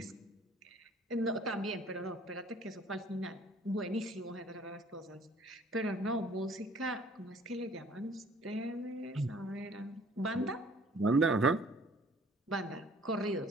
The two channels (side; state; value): both; normal; correlation 0.55